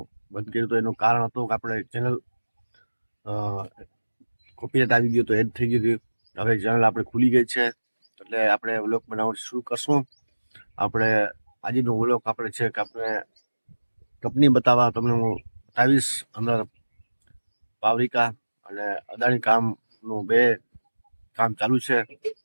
બંધ કર્યું તો એનું કારણ હતું કે આપણે ચેનલ કોપીરાઇટ આવી ગયું તો એડ થઈ ગયું હતું. હવે ચેનલ આપણે ખુલી ગઈ છે એટલે આપણે વ્લોગ બનાવવાનું શરૂ કરશું. આપણે આજનો વ્લોગ આપણે છે કે આપણે કંપની બતાવવા તમને હું બતાવીશ. અંદર પાવરિકા અને અદાણી કામનું બે કામ ચાલુ છે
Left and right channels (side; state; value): both; inverted; correlation -1.00